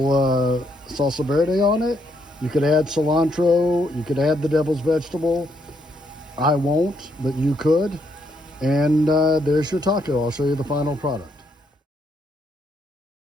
salsa verde on it. You could add cilantro, you could add the devil's vegetable. I won't, but you could. And there's your taco. I'll show you the final product.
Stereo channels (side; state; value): both; normal; correlation 0.74